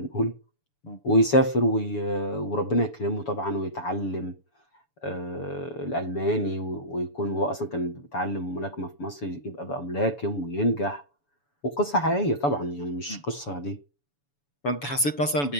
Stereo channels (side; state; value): right; late; 7.0 ms